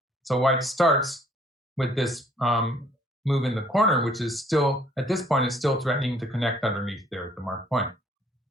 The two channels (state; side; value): normal; both; correlation 0.61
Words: So white starts with this move in the corner, which is still, at this point, is still threatening to connect underneath there at the marked point.